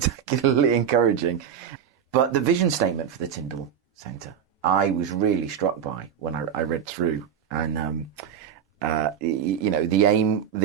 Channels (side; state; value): left; quieter; 8.3 dB